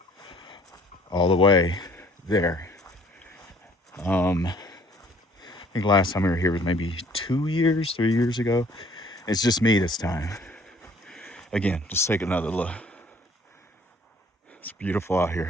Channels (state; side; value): normal; both; correlation 0.57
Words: all the way there. I think last time we were here was maybe 3 years ago. It's just me this time. Again, just take another look. It's beautiful out